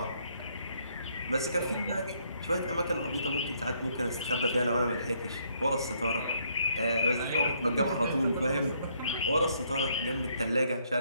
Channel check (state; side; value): inverted; both; correlation -0.70